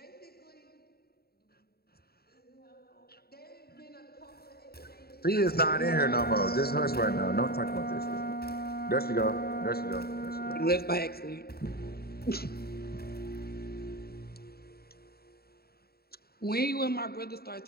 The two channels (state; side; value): late; right; 0.45 ms